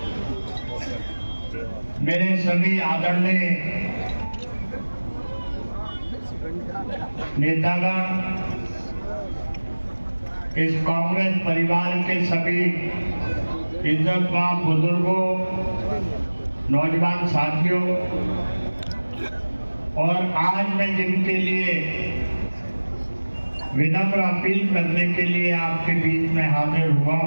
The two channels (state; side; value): inverted; both; correlation -1.00